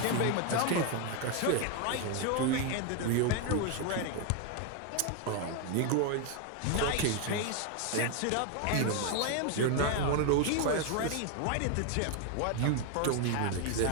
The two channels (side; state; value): both; different; correlation 0.01